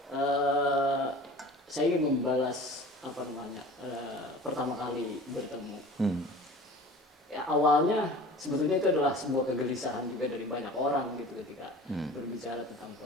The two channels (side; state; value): both; normal; correlation 0.41